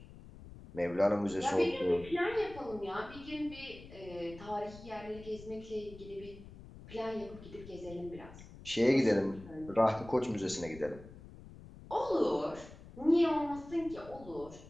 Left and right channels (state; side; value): noise; left; rumble, 17 dB below the sound